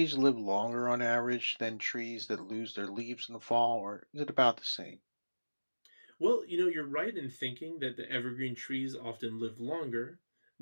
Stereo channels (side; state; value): both; inverted; correlation -1.00